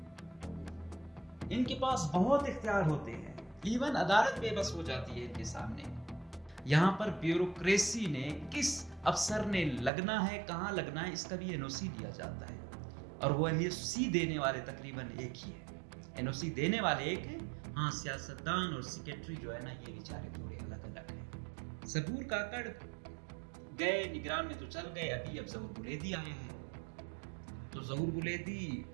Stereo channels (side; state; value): left; drops out; at 9.9 s